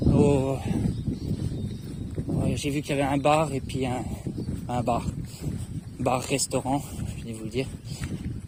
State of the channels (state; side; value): identical; both; correlation 1.00